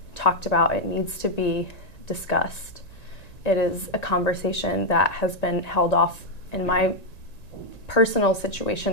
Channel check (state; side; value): late; right; 1.9 ms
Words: talked about. It needs to be discussed. It is a conversation that has been held off in my personal